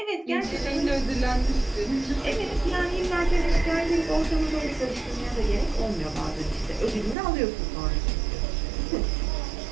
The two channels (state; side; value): drops out; left; at 7.2 s